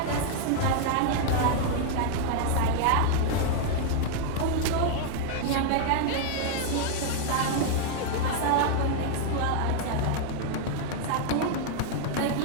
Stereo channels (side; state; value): both; different; correlation -0.01